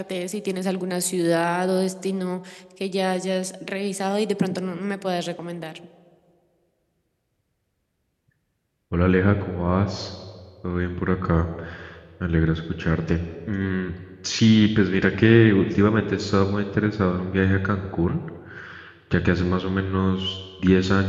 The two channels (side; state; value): both; identical; correlation 1.00